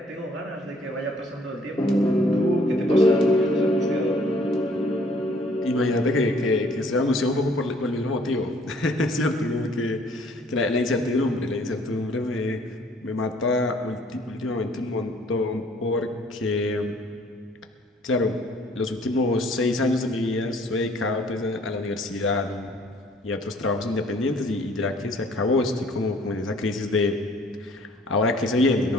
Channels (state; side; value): normal; both; correlation 0.59